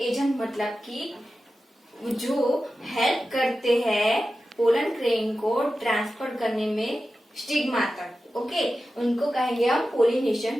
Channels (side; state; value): both; normal; correlation 0.93